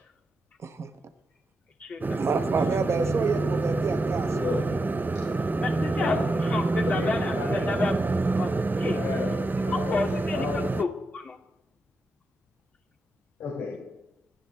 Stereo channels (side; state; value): both; normal; correlation 0.86